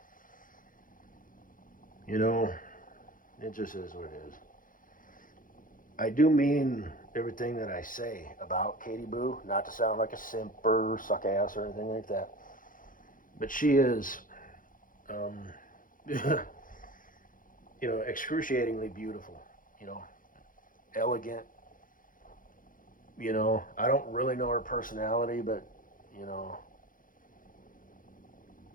It just is what it is. I do mean everything that I say about Katie Boo, not to sound like a simp or suck ass or anything like that. But she is, excruciatingly beautiful, elegant. I don't really know her personality, but,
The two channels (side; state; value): right; late; 0.40 ms